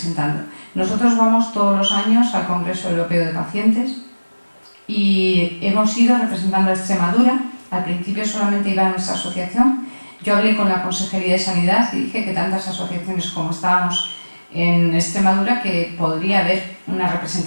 Nosotros vamos todos los años al Congreso Europeo de Pacientes y hemos ido representando a Extremadura. Al principio solamente iba a nuestra asociación. Yo hablé con la Consejería de Sanidad y dije que tantas asociaciones como estábamos en Extremadura que podría haber una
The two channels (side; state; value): both; inverted; correlation -1.00